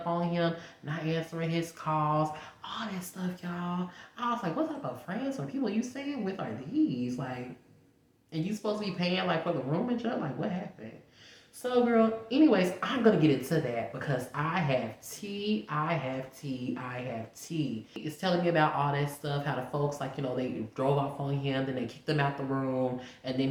on him, not answering his calls, all that stuff, y'all. I was like, what type of friends or people you staying with are these? Like, and you supposed to be paying like for the room and stuff? Like, what happened? So, girl, anyways, I'm going to get into that because I have tea. It's telling me about all that stuff, how the folks, like, they drove off on him, then they kicked him out the room, and then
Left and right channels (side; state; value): both; identical; correlation 1.00